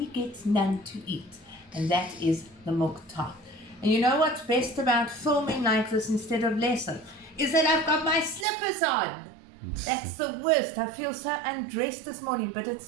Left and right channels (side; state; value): left; drops out; at 8.5 s